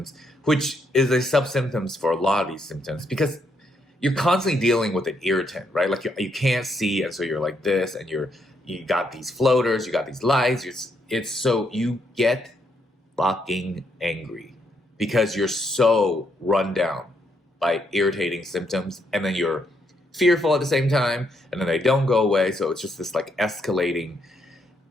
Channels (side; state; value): both; normal; correlation 0.76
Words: which is a sub-symptoms for a lot of these symptoms, because you're constantly dealing with an irritant, right? Like you can't see, and so you're like this, and you got these floaters, you got these lights. It's so you get fucking angry because you're so run down by irritating symptoms, and then you're fearful at the same time, and then they don't go away. So it's just this like escalating,